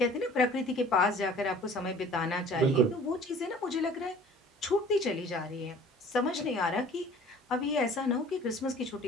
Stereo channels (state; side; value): normal; both; correlation 0.49